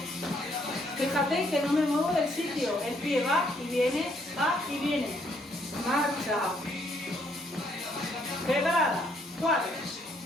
Fíjate que no me muevo del sitio. El pie va y viene, va y viene. Marcha. Preparada. 4,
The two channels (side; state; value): both; normal; correlation 0.69